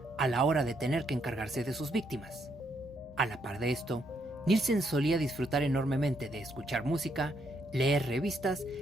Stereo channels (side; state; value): both; normal; correlation 0.75